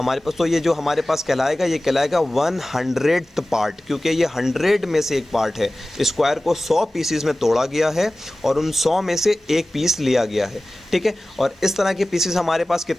पास, तो ये जो हमारे पास कहलाएगा ये कहलाएगा 100th पार्ट, क्योंकि ये 100 में से एक पार्ट है। स्क्वायर को 100 पीसीज में तोड़ा गया है और उन 100 में से एक पीस लिया गया है, ठीक है। और इस तरह के पीसेस हमारे पास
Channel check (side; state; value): both; normal; correlation 0.97